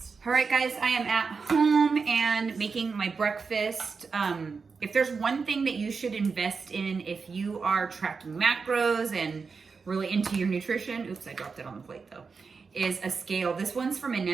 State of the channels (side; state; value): left; quieter; 5.0 dB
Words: All right, guys, I am at home and making my breakfast. If there's one thing that you should invest in if you are tracking macros and really into your nutrition, oops, I dropped it on the plate though, is a scale. This one's from